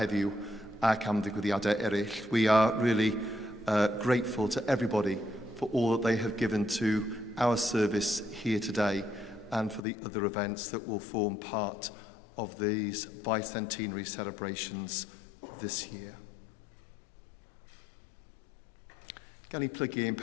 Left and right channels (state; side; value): drops out; right; at 9.8 s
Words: ac am ddigwyddiadau eraill. We are really grateful to everybody for all that they have given to our service here today and for the other events that will form part of these bicentenary celebrations this year. Gan I plygu ein